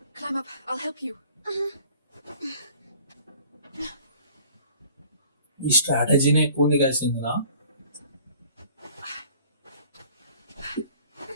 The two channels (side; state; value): both; inverted; correlation -0.51